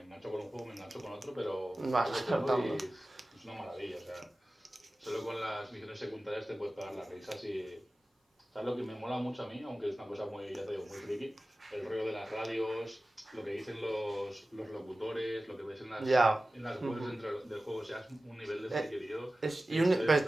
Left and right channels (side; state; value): both; normal; correlation 0.96